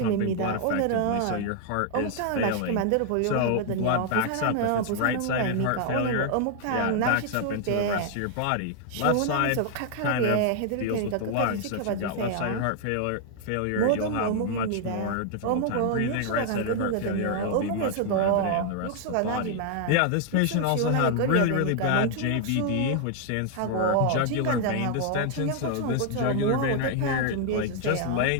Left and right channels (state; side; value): different; both; correlation 0.00